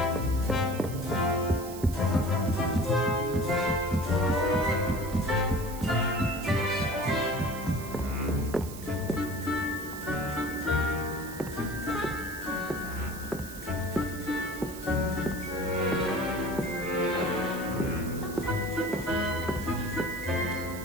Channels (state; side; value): noise; right; hiss, 14 dB below the sound